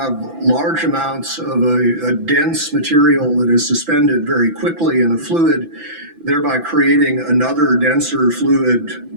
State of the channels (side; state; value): left; late; 6.0 ms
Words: large amounts of a dense material that is suspended very quickly in a fluid, thereby creating another denser fluid,